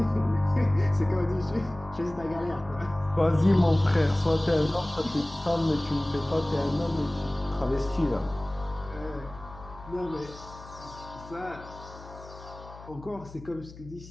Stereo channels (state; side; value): noise; left; hum, 17 dB below the sound